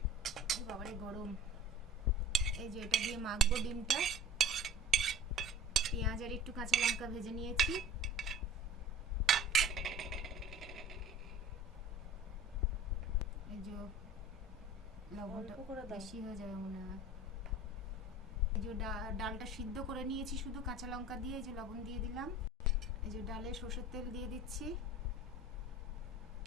বাবারে গরম। এই যে এটা দিয়ে মাখবো ডিমটা। পেঁয়াজ আর একটু কাঁচা লঙ্কা ভেজে নিয়েছি। এই যে লবণটা বেশি হয়ে যাবে মনে হয়। এই যে ডালটা সিদ্ধ করে নিয়েছি শুধু কাঁচা লঙ্কা দিয়ে, এই যে লবণ দিয়ে দিলাম। এই যে ডালে সরষের তেল দিয়ে দিচ্ছি।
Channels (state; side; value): normal; both; correlation 0.43